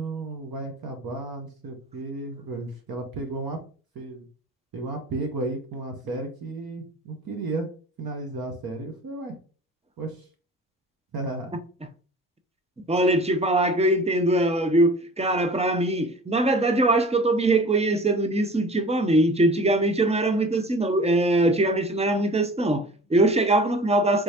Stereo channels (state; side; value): normal; both; correlation 0.42